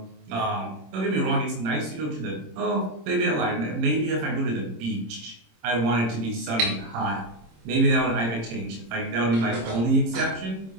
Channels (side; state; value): left; late; 26 ms